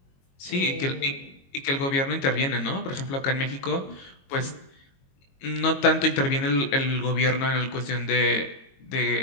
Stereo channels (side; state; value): right; late; 22 ms